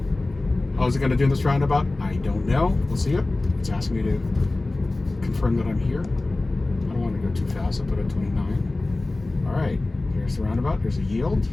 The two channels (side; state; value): right; quieter; 3.0 dB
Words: How is it going to do in this roundabout? I don't know. We'll see it. It's asking me to confirm that I'm here. I don't want to go too fast. I'll put it at 29. All right, here's the roundabout. There's a yield